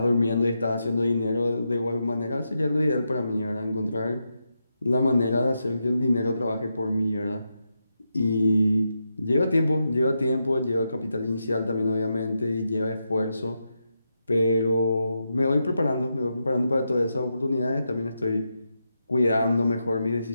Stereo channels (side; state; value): both; inverted; correlation -0.86